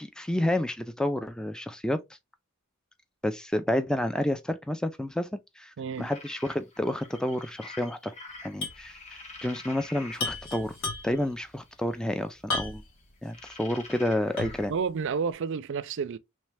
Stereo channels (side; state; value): both; normal; correlation 0.72